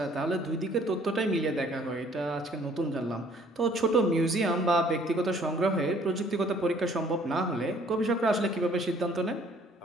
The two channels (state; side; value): normal; both; correlation 0.59